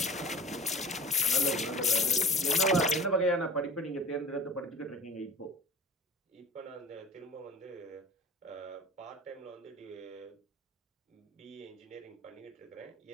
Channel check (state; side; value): normal; both; correlation 0.43